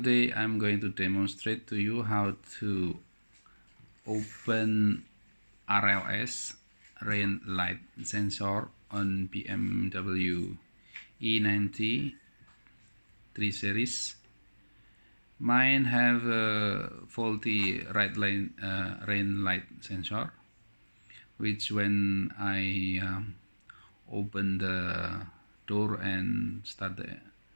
I'm going to demonstrate to you how to open RLS rain light sensor on BMW E90 3 series. Mine have a faulty rain light sensor, which when I open the door and start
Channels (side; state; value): both; inverted; correlation -1.00